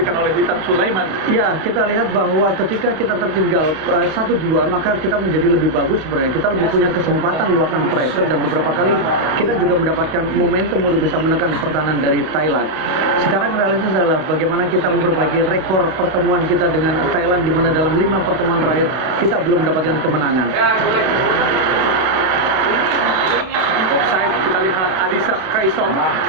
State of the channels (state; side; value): late; left; 32 ms